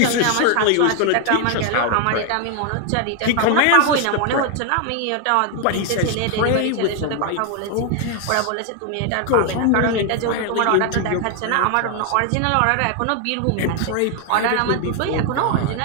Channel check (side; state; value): both; different; correlation 0.01